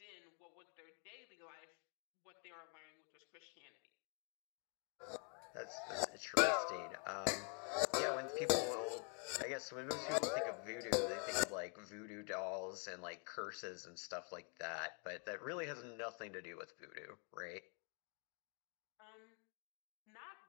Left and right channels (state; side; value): quieter; right; 38.8 dB